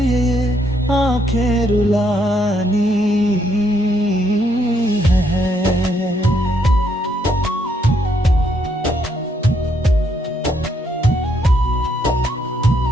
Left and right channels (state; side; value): normal; both; correlation 0.73